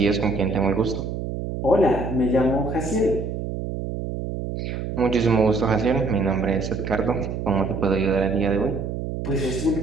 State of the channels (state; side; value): noise; right; hum, 5 dB below the sound